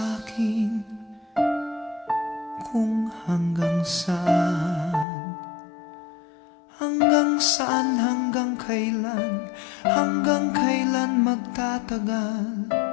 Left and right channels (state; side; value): drops out; right; at 5.1 s